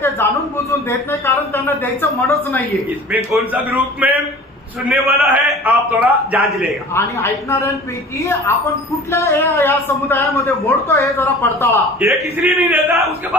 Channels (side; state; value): both; normal; correlation 0.42